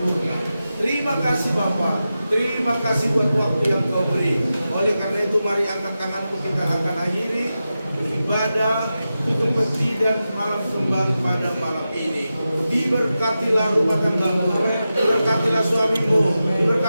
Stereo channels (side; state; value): both; inverted; correlation -0.92